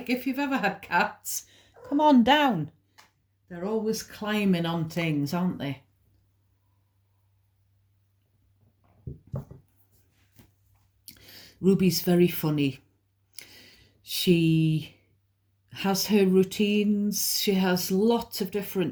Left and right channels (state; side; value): identical; both; correlation 1.00